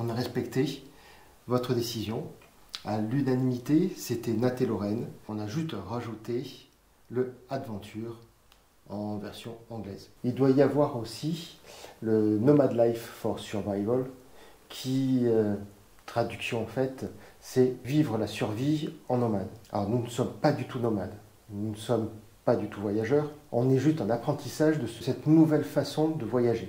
a respecté votre décision. À l'unanimité, c'était Nat et Lorraine. On a juste rajouté le Adventure en version anglaise. Il doit y avoir aussi le Nomad Life for Survival qui traduction en fait, c'est vivre la survie en nomade. Alors nous ne sommes pas du tout nomades, nous ne sommes pas du tout voyageurs, on est juste en apprentissage de cette nouvelle façon de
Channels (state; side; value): identical; both; correlation 1.00